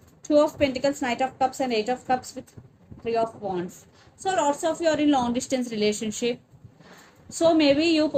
Two of Pentacles, Knight of Cups and Eight of Cups with Three of Wands. So lots of you are in long distance relationship. So maybe you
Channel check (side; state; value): both; identical; correlation 1.00